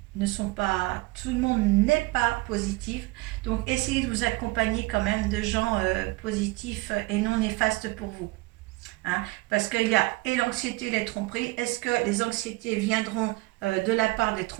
pas positif. Donc essayez de vous accompagner quand même de gens positifs et non néfastes pour vous. Parce qu'il y a et l'anxiété et les tromperies. Est-ce que les anxiétés viendront de la part des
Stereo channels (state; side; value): quieter; left; 22.0 dB